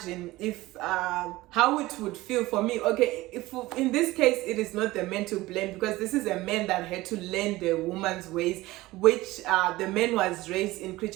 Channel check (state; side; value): quieter; left; 18.7 dB